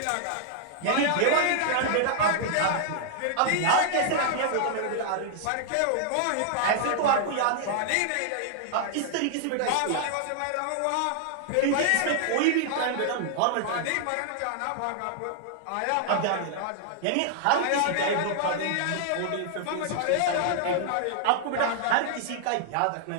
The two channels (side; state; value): both; different; correlation -0.01